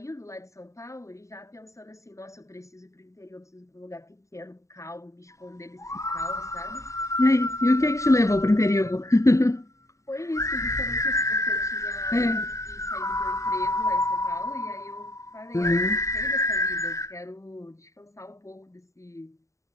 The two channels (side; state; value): right; late; 0.15 ms